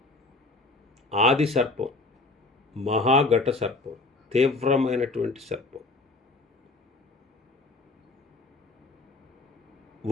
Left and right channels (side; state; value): right; quieter; 3.3 dB